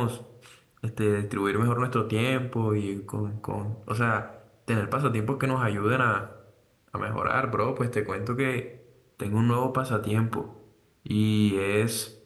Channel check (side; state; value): both; identical; correlation 1.00